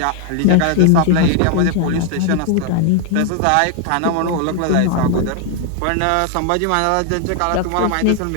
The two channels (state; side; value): different; both; correlation 0.00